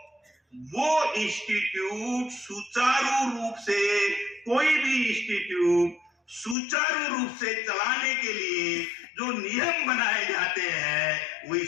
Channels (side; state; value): right; drops out; at 6.6 s